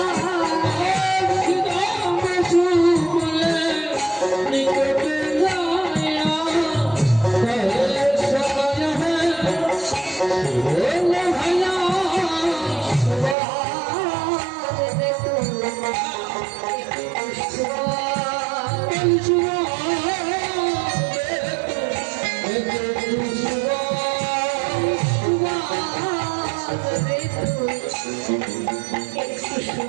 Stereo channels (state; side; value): drops out; left; at 13.4 s